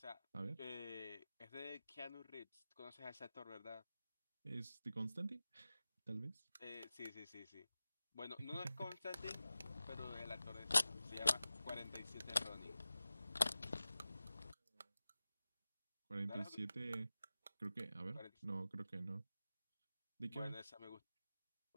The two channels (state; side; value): inverted; both; correlation -0.95